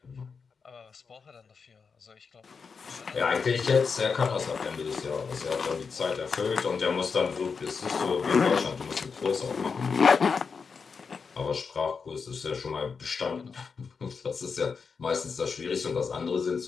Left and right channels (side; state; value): right; quieter; 5.4 dB